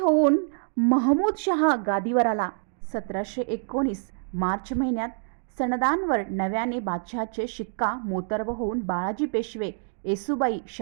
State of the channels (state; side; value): silent; left; digital silence